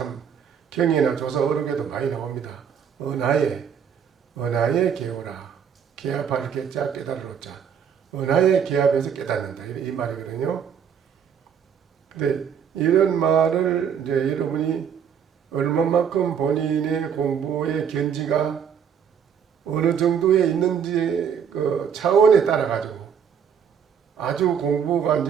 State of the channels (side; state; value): left; quieter; 7.7 dB